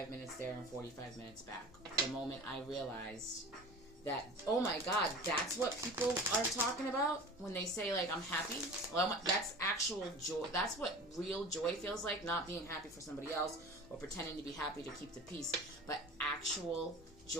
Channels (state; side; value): noise; left; hum, 26 dB below the sound